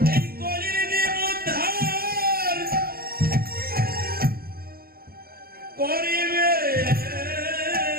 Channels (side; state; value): left; late; 0.44 ms